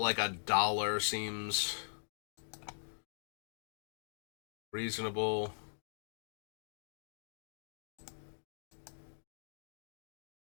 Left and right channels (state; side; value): silent; right; digital silence